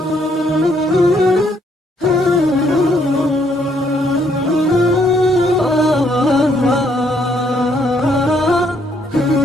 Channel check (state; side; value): normal; both; correlation 0.70